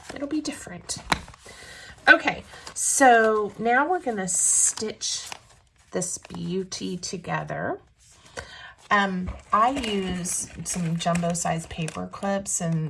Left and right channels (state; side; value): identical; both; correlation 1.00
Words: It'll be different. Okay, so now we're going to stitch this beauty together. I use some jumbo size paper clips,